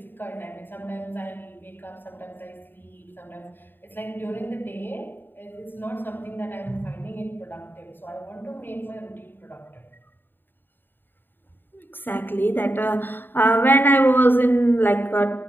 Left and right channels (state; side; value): late; right; 0.095 ms